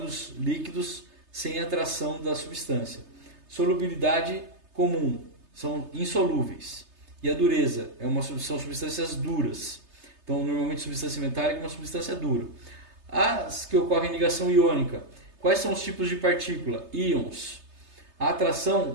líquidos, sem atração da substância. Solubilidade comum, são insolúveis. E a dureza, são substâncias duras. Então, normalmente, substância metálica é uma substância dura. As que ocorrem em ligação iônica. Quais são os tipos de partícula? Íons. A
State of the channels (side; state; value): left; late; 3.3 ms